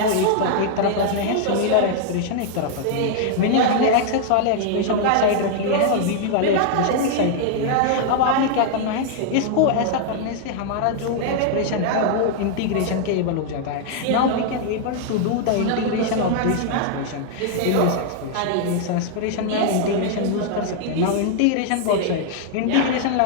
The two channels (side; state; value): both; different; correlation 0.00